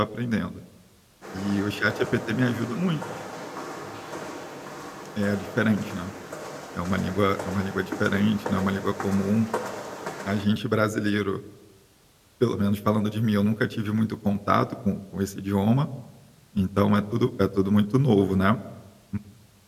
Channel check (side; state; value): both; identical; correlation 1.00